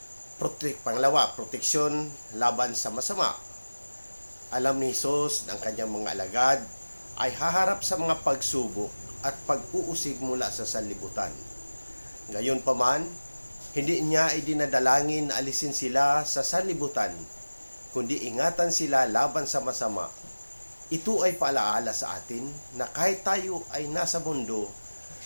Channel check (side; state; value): both; inverted; correlation -1.00